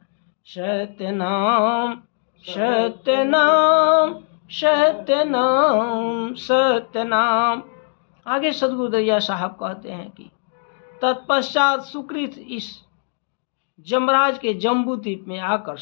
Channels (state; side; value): silent; right; digital silence